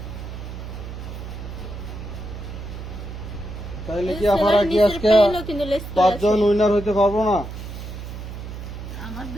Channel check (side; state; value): right; noise; hum, 9 dB below the sound